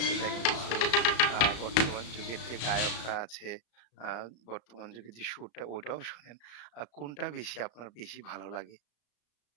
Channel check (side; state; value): right; late; 34 ms